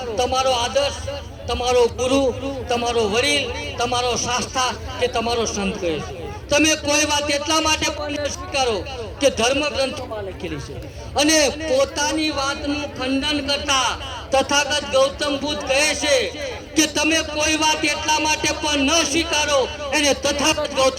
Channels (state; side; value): identical; both; correlation 1.00